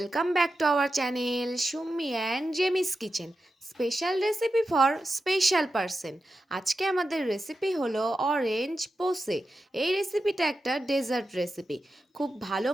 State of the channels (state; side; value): normal; both; correlation 0.90